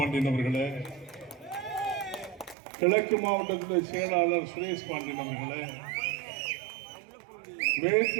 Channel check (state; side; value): drops out; left; at 2.6 s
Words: அவர்களே, கிழக்கு மாவட்டத்துடைய செயலாளர் சுரேஷ் பாண்டியன் அவர்களே,